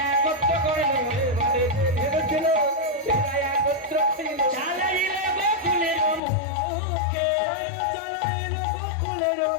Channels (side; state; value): right; drops out; at 6.2 s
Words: একত্র করে, এবারে যে ধেনু ছিল ফিরায় একত্র ছিল, চালাইল গোকুলের মুখে, চালাইল গোকুলের